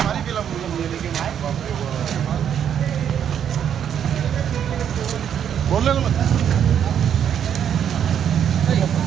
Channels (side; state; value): left; quieter; 8.9 dB